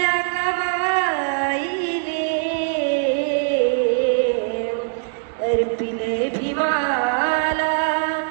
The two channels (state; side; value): silent; left; digital silence